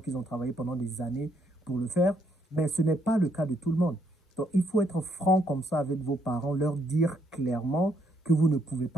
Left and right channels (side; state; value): both; normal; correlation 0.72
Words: qu'ils ont travaillé pendant des années pour le faire. Mais ce n'est pas le cas de tout le monde. Donc, il faut être franc comme ça avec vos parents, leur dire clairement que vous ne pouvez